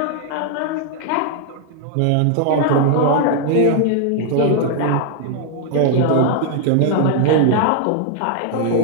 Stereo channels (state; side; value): different; both; correlation 0.00